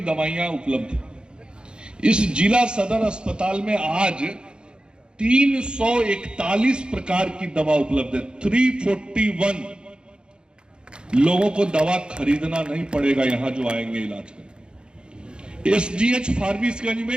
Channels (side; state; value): left; late; 0.050 ms